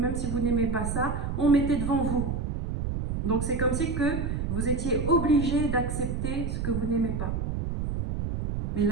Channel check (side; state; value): right; noise; rumble, 2 dB below the sound